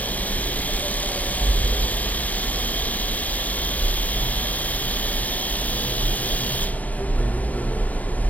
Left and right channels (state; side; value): late; right; 0.073 ms